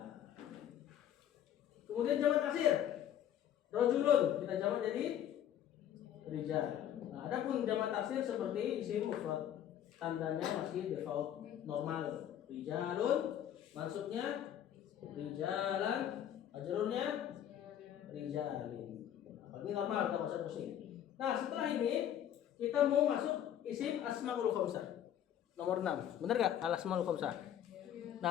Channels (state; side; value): quieter; right; 10.5 dB